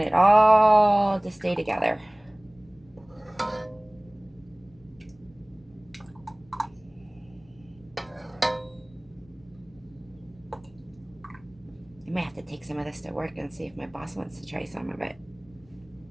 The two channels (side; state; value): left; noise; rumble, 28 dB below the sound